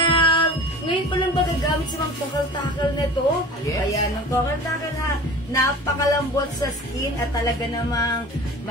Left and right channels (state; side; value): normal; both; correlation 0.40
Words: Ngayon pa lang ba gagamit si Ma'am Takel nito? Yes. Ayan, Ma'am Takel ha. Napakalambot sa skin at talaga namang